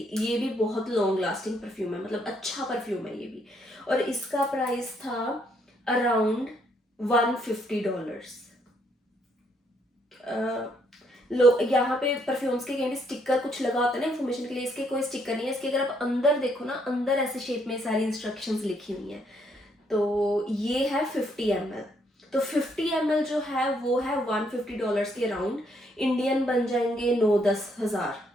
ये भी बहुत लॉन्ग लास्टिंग परफ्यूम है, मतलब अच्छा परफ्यूम है ये भी, और इसका प्राइस था अराउंड $150। यहाँ पे परफ्यूम्स के कहीं भी स्टिकर कुछ लगा होता है ना इन्फॉर्मेशन के लिए, इसके कोई स्टिकर नहीं है। इसके अगर आप अंदर देखो ना, अंदर ऐसे शेप में सारी इंस्ट्रक्शंस लिखी हुई हैं। तो ये है 50 ml। तो 50 ml जो है वो है $150 के अराउंड, इंडियन बन जाएंगे 9-10 हज़ार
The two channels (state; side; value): normal; both; correlation 0.71